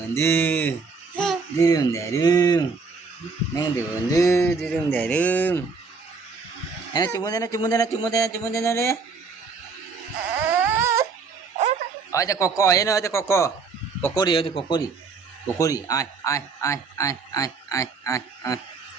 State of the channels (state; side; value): quieter; left; 4.7 dB